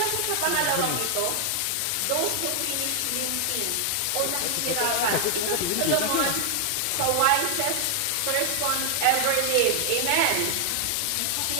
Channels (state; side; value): different; both; correlation 0.00